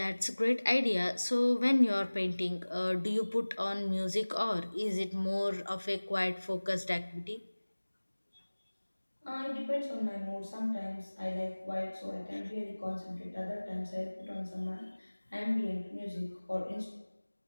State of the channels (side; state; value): both; inverted; correlation -1.00